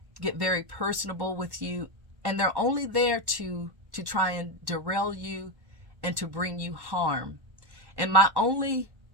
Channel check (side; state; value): left; late; 1.1 ms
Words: get very personable with you, and they're only there to try and derail you and to bring you harm. And my only